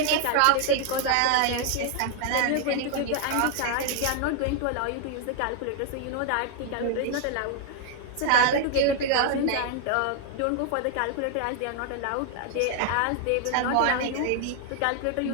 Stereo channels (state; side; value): different; both; correlation 0.00